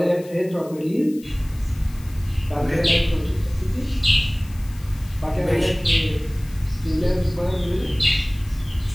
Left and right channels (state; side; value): noise; left; hiss, 23 dB below the sound